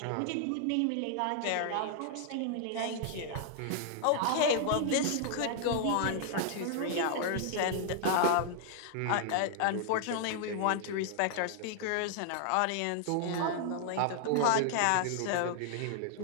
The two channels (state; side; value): different; both; correlation -0.01